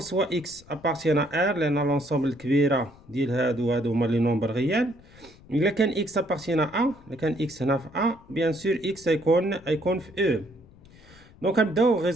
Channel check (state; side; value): noise; left; rumble, 24 dB below the sound